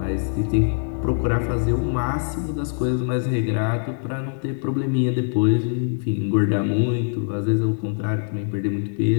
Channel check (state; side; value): silent; right; digital silence